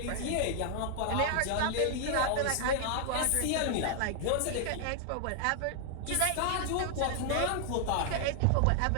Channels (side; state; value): both; different; correlation 0.00